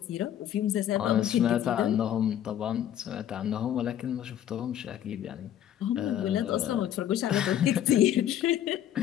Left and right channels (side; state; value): right; quieter; 10.9 dB